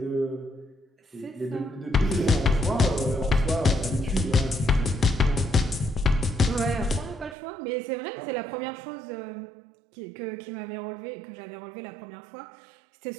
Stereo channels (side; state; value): left; drops out; at 7.4 s